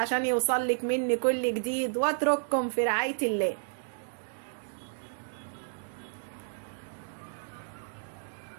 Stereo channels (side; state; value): left; silent; digital silence